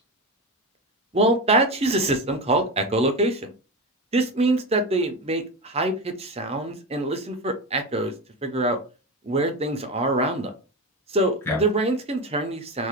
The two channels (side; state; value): both; normal; correlation 0.19